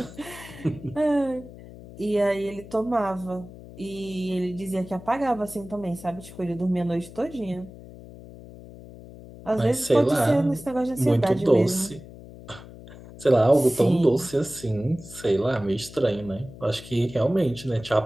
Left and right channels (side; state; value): left; noise; hum, 17 dB below the sound